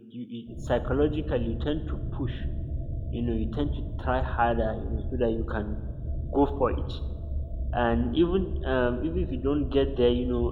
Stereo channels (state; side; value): identical; both; correlation 1.00